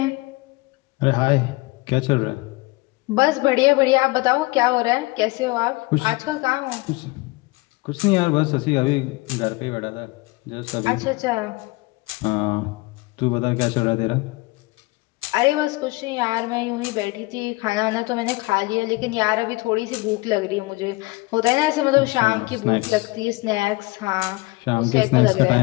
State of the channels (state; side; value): quieter; right; 23.4 dB